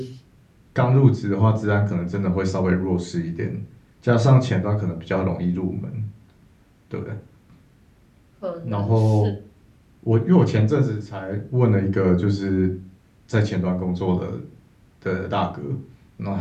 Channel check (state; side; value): identical; both; correlation 1.00